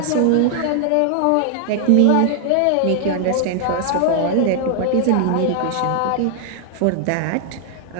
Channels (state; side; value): different; both; correlation 0.00